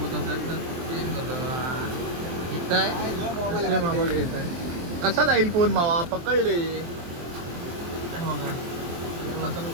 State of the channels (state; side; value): late; left; 23 ms